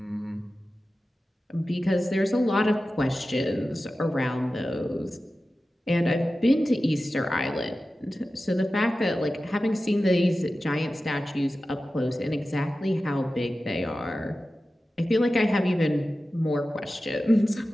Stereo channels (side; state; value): both; normal; correlation 0.94